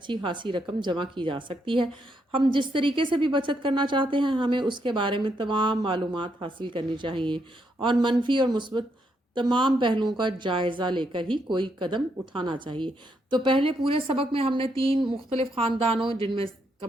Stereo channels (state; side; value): normal; both; correlation 0.77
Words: خاصی رقم جمع کی جا سکتی ہے۔ ہم جس طریقے سے بھی بچت کرنا چاہتے ہیں ہمیں اس کے بارے میں تمام معلومات حاصل کرنی چاہیے اور منفی اور مثبت تمام پہلوؤں کا جائزہ لے کر ہی کوئی قدم اٹھانا چاہیے۔ تو پہلے پورے سبق میں ہم نے 3 مختلف خاندانوں، جن میں